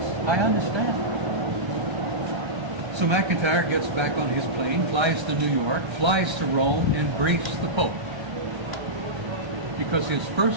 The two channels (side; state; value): left; late; 1.3 ms